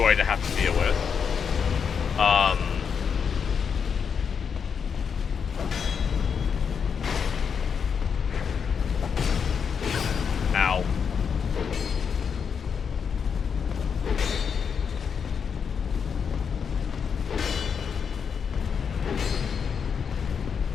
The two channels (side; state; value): right; quieter; 6.6 dB